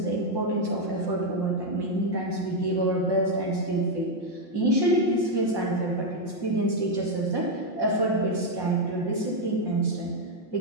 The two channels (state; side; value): late; right; 5.8 ms